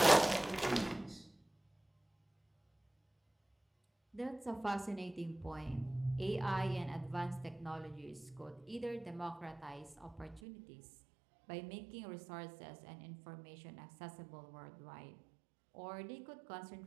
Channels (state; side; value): drops out; left; at 10.4 s